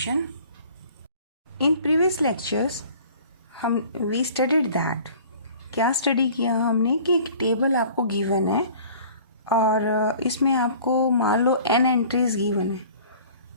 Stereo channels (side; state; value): both; inverted; correlation -0.48